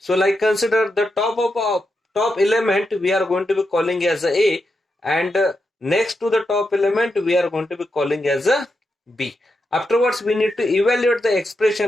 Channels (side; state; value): both; normal; correlation 0.86